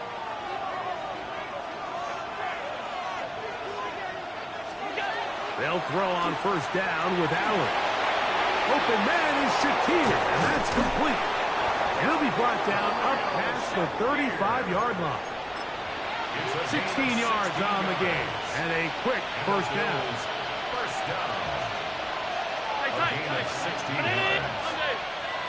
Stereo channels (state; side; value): identical; both; correlation 1.00